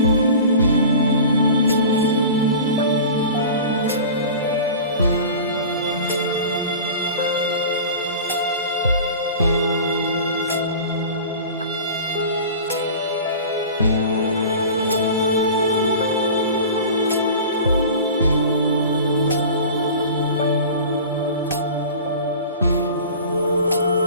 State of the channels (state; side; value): inverted; both; correlation -0.38